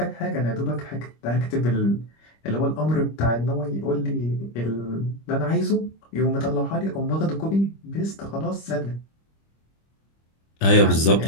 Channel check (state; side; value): late; right; 25 ms